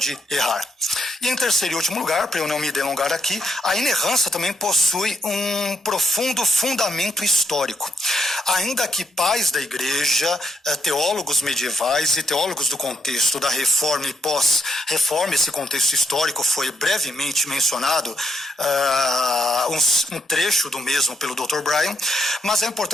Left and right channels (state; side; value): normal; both; correlation 0.77